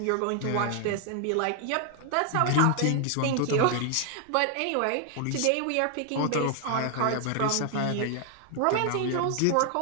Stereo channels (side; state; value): both; different; correlation 0.00